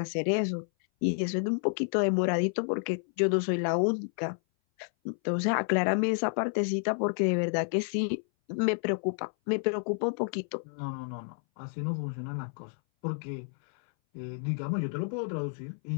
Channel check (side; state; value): right; silent; 58 dB below the other